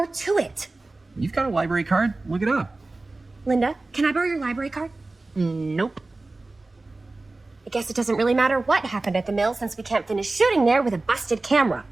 to it. You've got a library card? Look it up. Linda, can I borrow your library card? Nope. I guess it doesn't really matter what happened at the mill since we can't finish shooting there with a busted camera.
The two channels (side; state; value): left; quieter; 3.2 dB